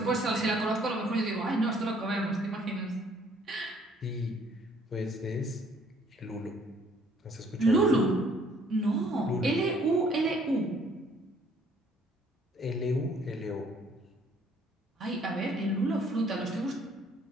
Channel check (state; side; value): normal; both; correlation 0.61